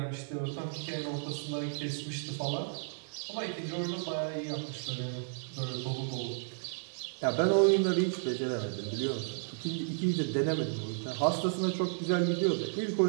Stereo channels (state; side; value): silent; left; 56 dB below the other